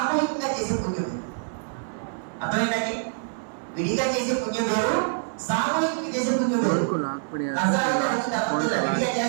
చేసే పుణ్యం వేరు. అర్థమైందండి? విడిగా చేసే పుణ్యం వేరు, సామూహికంగా చేసే పుణ్యం వేరు. విడిగా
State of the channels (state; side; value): silent; left; 61 dB below the other